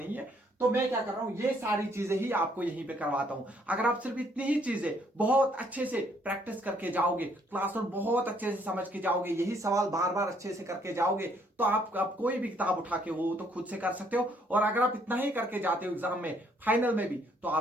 है, तो मैं क्या कर रहा हूं, ये सारी चीजें ही आपको यहीं पे करवाता हूं। अगर आप सिर्फ इतनी ही चीजें बहुत अच्छे से प्रैक्टिस करके जाओगे, क्लास में बहुत अच्छे से समझ के जाओगे, यही सवाल बार बार अच्छे से करके जाओगे, तो आप कोई भी किताब उठा के वो तो खुद से कर सकते हो। और अगर आप इतना ही करके जाते हो एग्जाम में, फाइनल में भी, तो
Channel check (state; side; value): normal; both; correlation 0.67